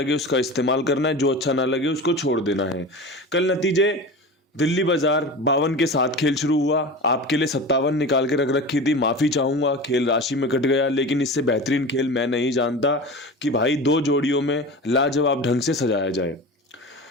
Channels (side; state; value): both; normal; correlation 0.31